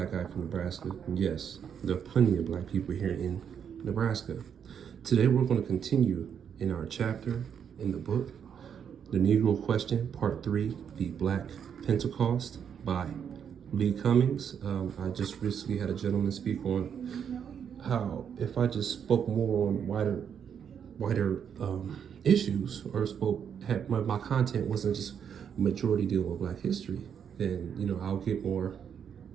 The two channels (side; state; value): left; quieter; 7.9 dB